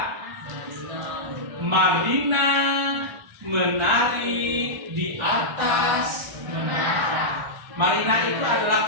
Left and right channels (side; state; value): left; late; 1.4 ms